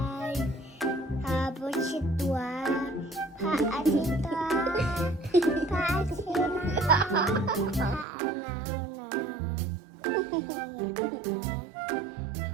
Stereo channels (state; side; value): drops out; left; at 8.1 s